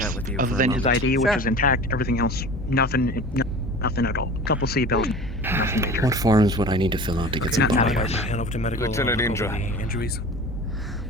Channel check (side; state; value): both; normal; correlation 0.38